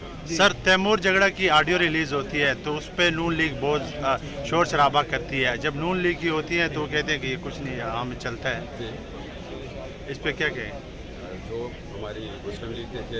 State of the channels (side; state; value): both; identical; correlation 1.00